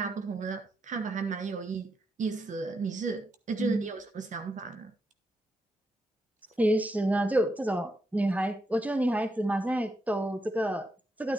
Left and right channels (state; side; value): normal; both; correlation 0.82